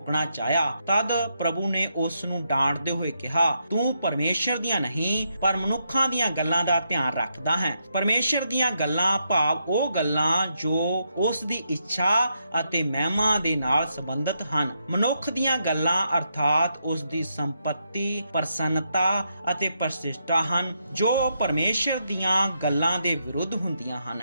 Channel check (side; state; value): both; inverted; correlation -0.80